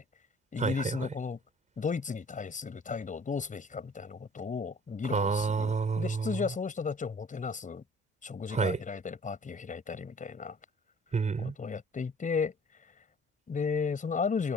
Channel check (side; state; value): both; normal; correlation 0.52